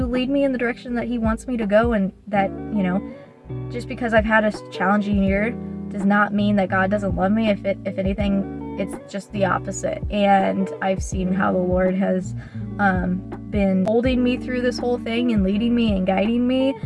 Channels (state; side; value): identical; both; correlation 1.00